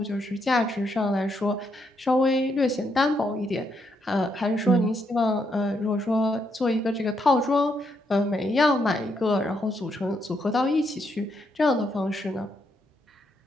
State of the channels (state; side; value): normal; both; correlation 0.77